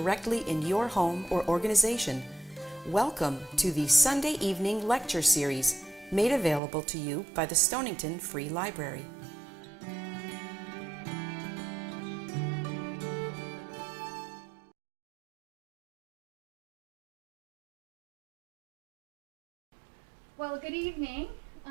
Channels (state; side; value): drops out; left; at 6.6 s